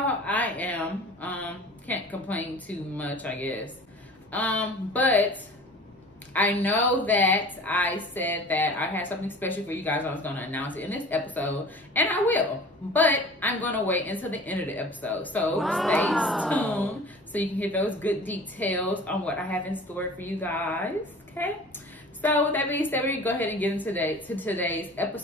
I am. Can't complain too much, I guess. But I know that I said that I had something special for you guys. I was going to announce it in this episode, and I will. But I'm going to wait until the end of the episode. So Stay tuned so you can hear those good details on what I have in store for you guys. Okay? So with that being said, we go ahead and get into today's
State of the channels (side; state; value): both; normal; correlation 0.42